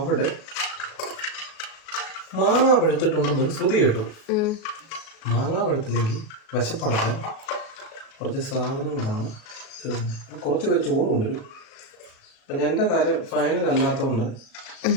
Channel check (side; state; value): right; late; 37 ms